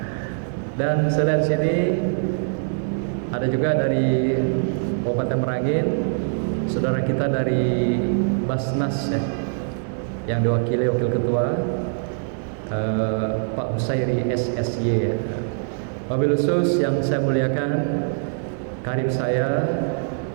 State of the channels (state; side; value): silent; left; digital silence